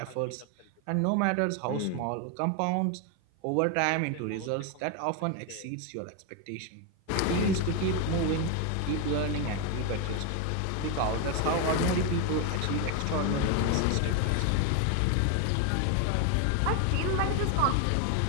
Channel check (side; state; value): both; different; correlation 0.01